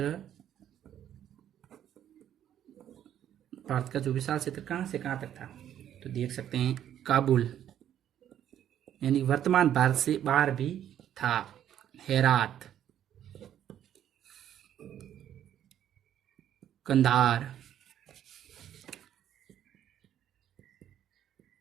भारत का जो विशाल क्षेत्र कहां से कहां तक था? तो देख सकते हैं, काबुल, यानी वर्तमान भारत से बाहर भी था। हेरात, कंधार,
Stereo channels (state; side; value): quieter; left; 10.6 dB